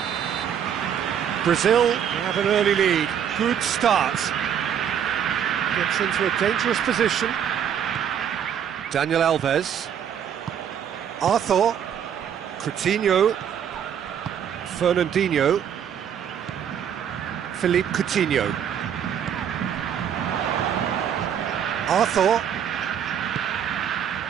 Brazil have an early lead. Good start. Gets into a dangerous position. Daniel Alves. Arthur. Coutinho. Fernandinho. Philippe Coutinho. Arthur.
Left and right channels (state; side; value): quieter; left; 8.7 dB